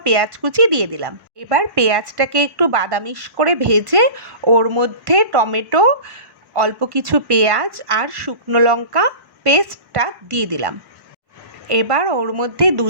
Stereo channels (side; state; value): left; late; 1.1 ms